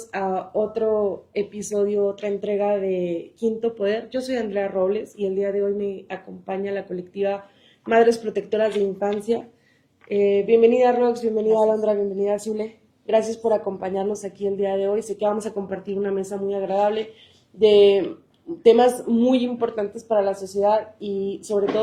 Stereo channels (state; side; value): identical; both; correlation 1.00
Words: a otro episodio, otra entrega de Quinto Poder. Yo soy Andrea Robles y el día de hoy me acompaña la colectiva Madres Protectoras de Infancia. Bienvenida Rox, bienvenida Gracias. Alondra, bienvenida Zule. Gracias por acompañarnos aquí el día de hoy. Sé que vamos a compartir una mesa muy agradable de temas muy importantes para la sociedad y sobre